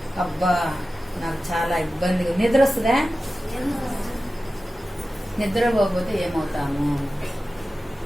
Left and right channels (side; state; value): both; normal; correlation 0.94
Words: అబ్బా నాకు చాలా ఇబ్బందిగా, నిద్ర వస్తుందా? నిద్రపోతే ఏమవుతాము?